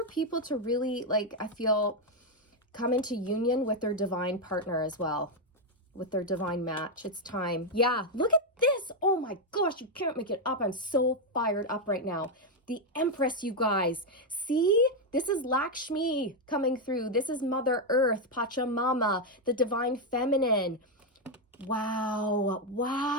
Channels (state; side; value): normal; both; correlation 0.03